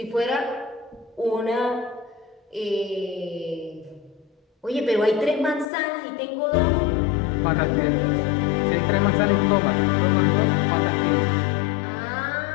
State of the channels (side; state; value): right; drops out; at 5.7 s